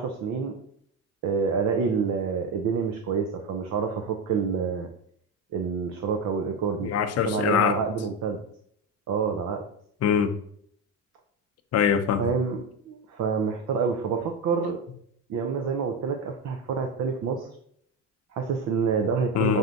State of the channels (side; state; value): both; normal; correlation 0.15